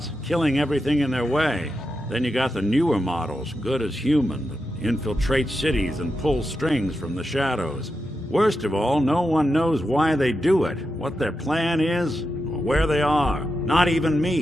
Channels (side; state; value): both; normal; correlation 0.88